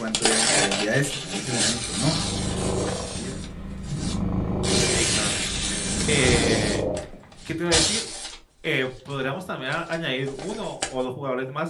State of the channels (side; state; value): both; identical; correlation 1.00